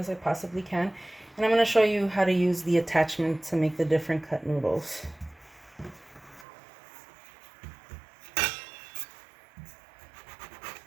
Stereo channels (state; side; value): drops out; left; at 6.5 s